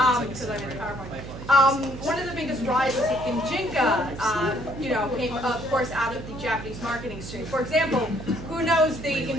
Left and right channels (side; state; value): right; noise; hum, 11 dB below the sound